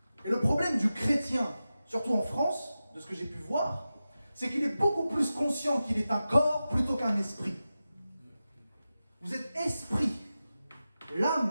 Et le problème du chrétien, surtout en France, de ce que j'ai pu voir, c'est qu'il est beaucoup plus conscient qu'il est un corps plutôt qu'un esprit. Vous êtes esprit.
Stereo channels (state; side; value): inverted; both; correlation -0.93